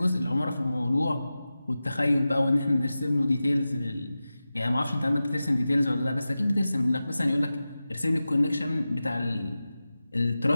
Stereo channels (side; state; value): both; inverted; correlation -0.95